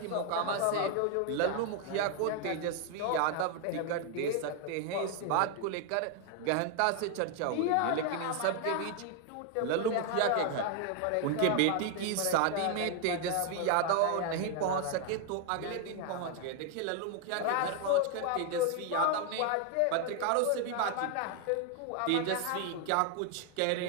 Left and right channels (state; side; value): different; both; correlation 0.00